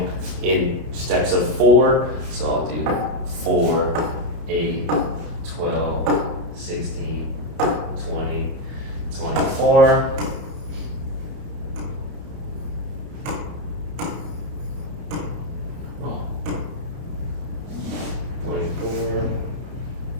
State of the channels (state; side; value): late; left; 30 ms